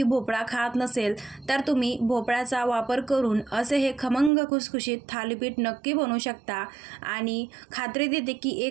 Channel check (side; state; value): left; drops out; at 4.3 s